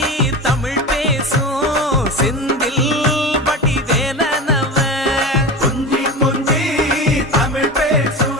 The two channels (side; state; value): both; normal; correlation 0.27